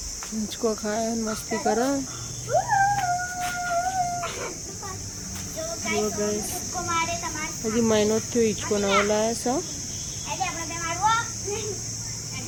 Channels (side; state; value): both; identical; correlation 1.00